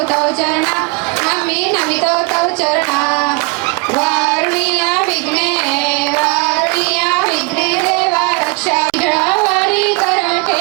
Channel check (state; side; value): quieter; left; 28.3 dB